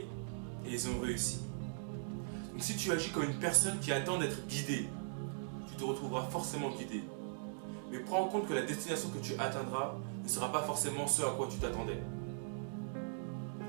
et ils ont réussi. Donc si tu agis comme une personne qui attend d'être guidée, tu te retrouveras forcément guidé. Mais prends en compte que la destination que tu atteindras ne sera pas forcément ce à quoi tu t'attendais.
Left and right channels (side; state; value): left; silent; digital silence